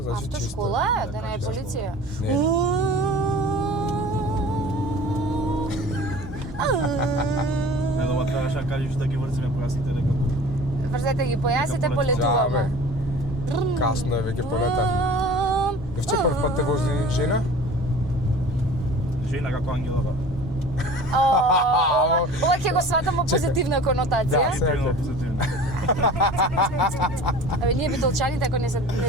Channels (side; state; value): right; noise; hum, 19 dB below the sound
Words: значи чисто. Автошкола е, да не е чисто. полиција. Не. Не, дома требаше да кажеш да ги врзиме појасите дека Врзете ги појасите, Дека полетуваме. Касно е веќе полетавме. Евче прв пат те вози жена? жена како ангелова. Ова ќе го сватам во позитивна конотација. Да. Позитивно, позитивно. Абе, ние битолчаните ако не се